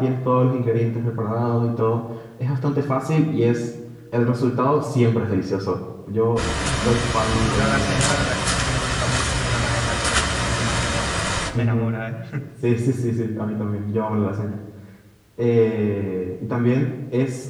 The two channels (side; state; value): both; identical; correlation 1.00